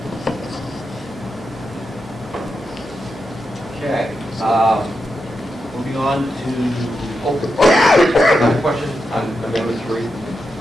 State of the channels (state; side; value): normal; both; correlation 0.87